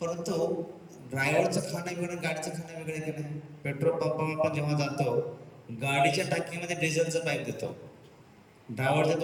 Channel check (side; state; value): both; identical; correlation 1.00